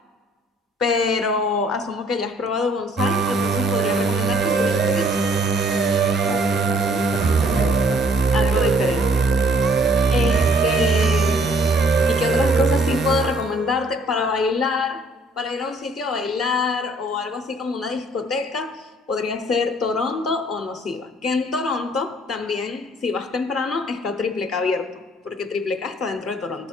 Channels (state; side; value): normal; both; correlation 0.60